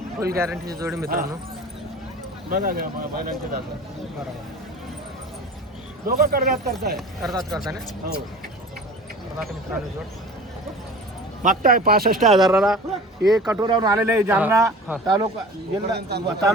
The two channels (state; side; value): normal; both; correlation 0.39